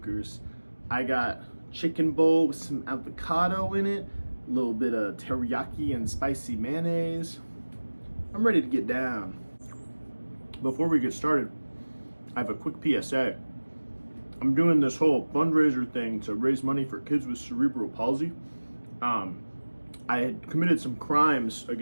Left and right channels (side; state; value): both; inverted; correlation -1.00